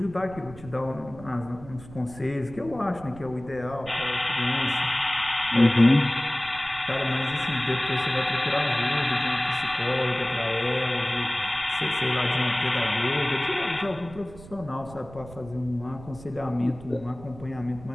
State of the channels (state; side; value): noise; right; rumble, 17 dB below the sound